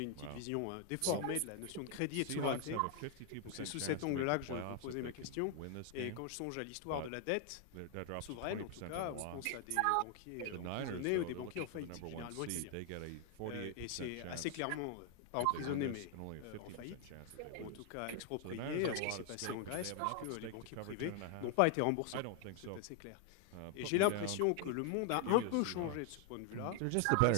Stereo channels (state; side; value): different; both; correlation 0.00